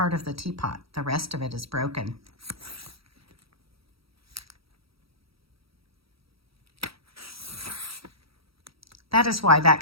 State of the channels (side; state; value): left; late; 0.76 ms